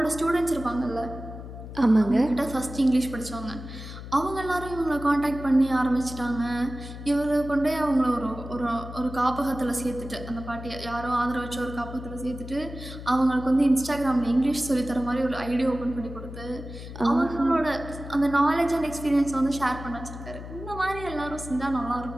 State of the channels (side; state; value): left; noise; hum, 11 dB below the sound